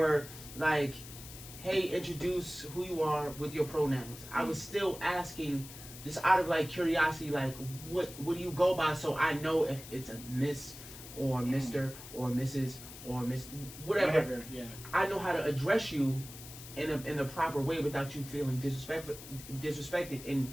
like, hey, introduce who you are with your pronouns. I was still asking, just out of like curiosity, like what do you go by, so I know if it's a Miss or Mr. or Mrs. or Miss whatever. Yeah. I know how to address you in the proper way without you feeling disrespected, and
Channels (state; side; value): noise; left; hiss, 14 dB below the sound